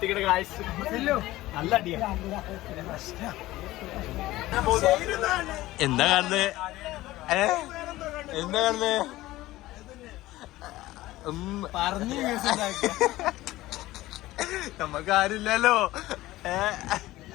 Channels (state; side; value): quieter; right; 17.1 dB